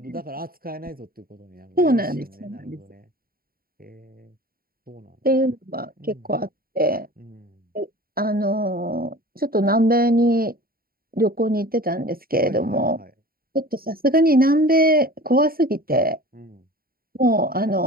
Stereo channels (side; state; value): left; late; 0.43 ms